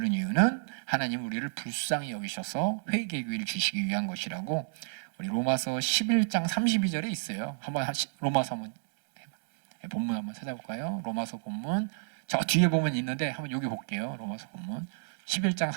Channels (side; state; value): left; silent; digital silence